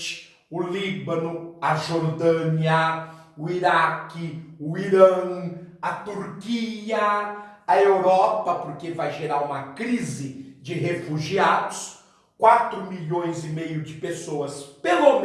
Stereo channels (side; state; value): both; identical; correlation 1.00